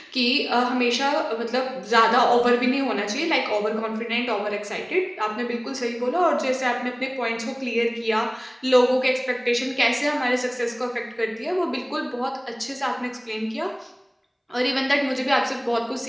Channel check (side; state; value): both; identical; correlation 1.00